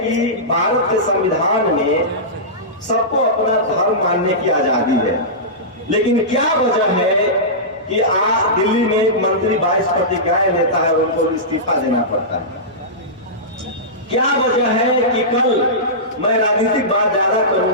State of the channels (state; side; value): normal; both; correlation -0.16